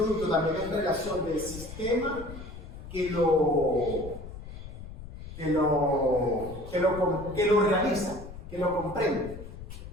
también es relación del sistema que lo realiza, que lo comprende.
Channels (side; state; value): left; noise; rumble, 12 dB below the sound